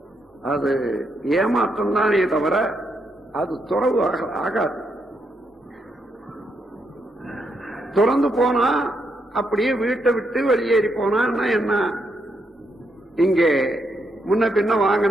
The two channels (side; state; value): both; normal; correlation 0.79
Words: அது ஏமாற்றம் தானே தவிர அது துறவு ஆகாது. துறந்து போனா அப்படியே வீட்டை விட்டு வெளியேறி போனா என்ன? இங்கே முன்ன பின்ன